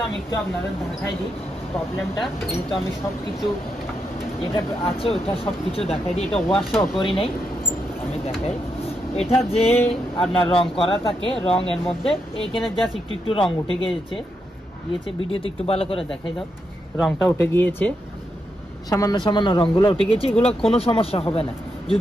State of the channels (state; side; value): normal; both; correlation 0.83